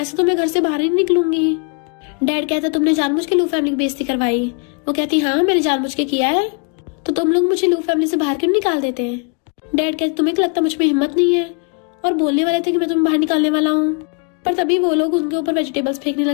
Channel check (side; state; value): right; quieter; 33.9 dB